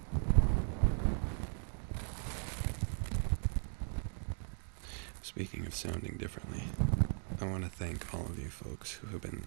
Speaking of sounding differently, I want to thank all of you folks who have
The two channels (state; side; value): silent; left; 53 dB below the other